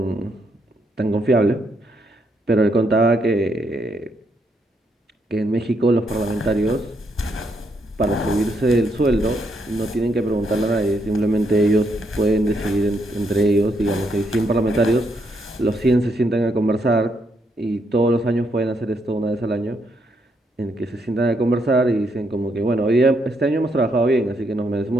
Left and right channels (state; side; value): normal; both; correlation 0.76